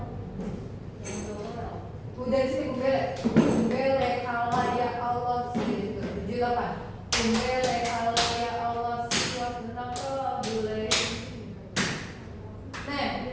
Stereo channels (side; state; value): both; identical; correlation 1.00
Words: Udah di sini kumbele Allah ya Allah sih gitu. 7, 8. Kumbele Allah ya Allah sih tentang boleh. Nah,